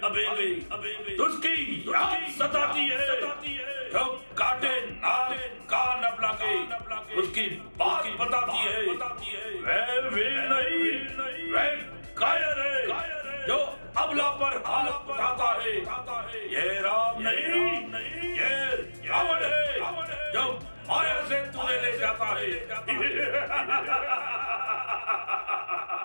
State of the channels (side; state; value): both; inverted; correlation -1.00